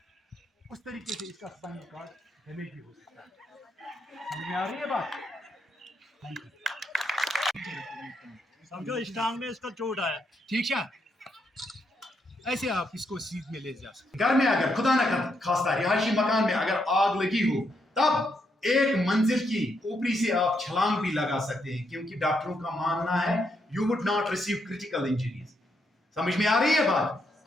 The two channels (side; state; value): both; normal; correlation 0.78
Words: اس طریقے سے اس کا اسپائنل کارڈ ڈیمیج بھی ہو سکتا ہے سمجھ میں آ رہی ہے بات سمجھو اس ٹانگ میں اس کا چوٹ آیا ٹھیک ہے ایسے آپ اس کو سیدھ میں لے جا سکتے گھر میں اگر خدا نہ خواستہ رہائشی مکان میں اگر آگ لگی ہو تب ایک منزل کی اوپری سے آپ چھلانگ بھی لگا سکتے ہیں کیونکہ ڈاکٹروں کا ماننا ہے you would not receive critical injuries سمجھ میں آ رہی ہے بات